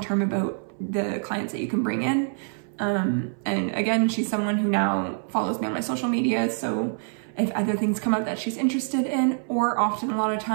about the clients that you can bring in. And again, she's someone who now follows me on my social media. So if other things come up that she's interested in, or often a lot of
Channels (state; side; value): silent; left; 60 dB below the other